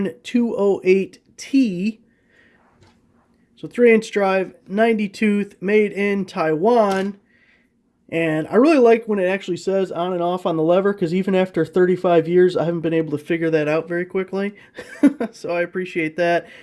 So 3/8 drive, 90 tooth, made in Taiwan. And I really like when it actually says on and off on the lever, because even after 35 years, I haven't been able to figure that out very quickly. So I appreciate that.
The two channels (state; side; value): identical; both; correlation 1.00